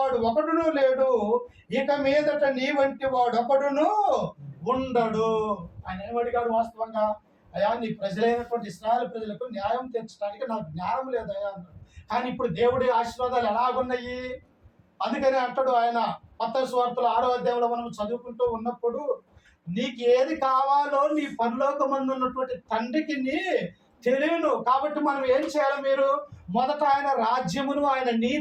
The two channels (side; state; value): both; identical; correlation 1.00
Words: ఒకడును లేడు, ఇక మీదట నీ వంటి వాడు ఒకడును ఉండడు. ఆయన ఏమడిగాడు? వాస్తవంగా, అయ్యా నీ ప్రజలైనటువంటి ఇశ్రాయేలు ప్రజలకు న్యాయం తీర్చడానికి నాకు జ్ఞానం లేదయ్యా అన్నాడు. కానీ ఇప్పుడు దేవుడి ఆశీర్వాదాలు ఎలాగున్నాయి? అందుకని అంటాడు ఆయన మత్తయి సువార్తలో 6వ అధ్యాయంలో మనం చదువుకుంటూ ఉన్నప్పుడు, నీకు ఏది కావాలో నీ పరలోకమందు ఉన్నటువంటి తండ్రికి నీ తెలియను. కాబట్టి మనం ఏం చేయాలి? మీరు మొదట ఆయన రాజ్యమును ఆయన